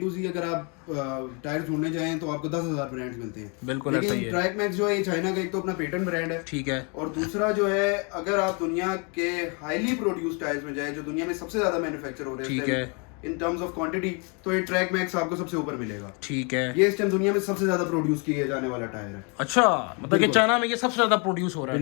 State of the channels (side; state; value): right; quieter; 34.2 dB